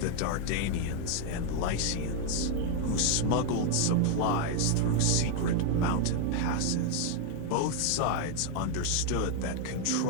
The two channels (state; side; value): different; both; correlation 0.00